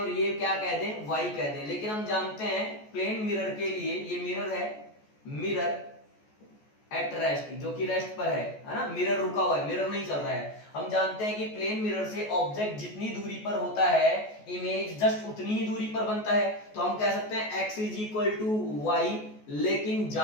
ये क्या कह दें? y कह दें। लेकिन हम जानते हैं प्लेन मिरर के लिए ये मिरर है, मिरर एट रेस्ट, जो कि रेस्ट पर है ना? मिरर रुका हुआ है, मिरर नहीं चल रहा है। हम जानते हैं कि प्लेन मिरर से ऑब्जेक्ट जितनी दूरी पर होता है, इमेज जस्ट उतनी ही दूरी पर बनता है। तो हम कह सकते हैं x is equal to y, लेकिन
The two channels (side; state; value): right; late; 14 ms